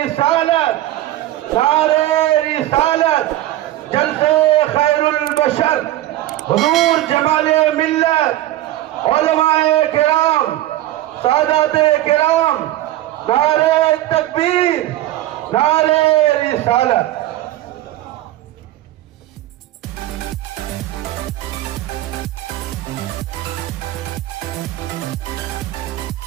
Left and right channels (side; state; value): left; quieter; 14.9 dB